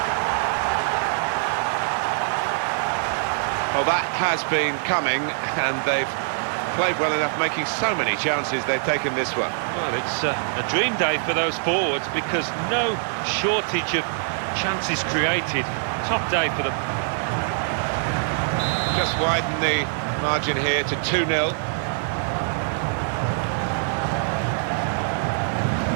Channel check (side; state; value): left; silent; 55 dB below the other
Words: Well, that has been coming, and they've played well enough, making so many chances. They've taken this one. Well, it's a dream day for those forwards because no shortage of chances created. Top day for them. Just widen the margin here to 2-0.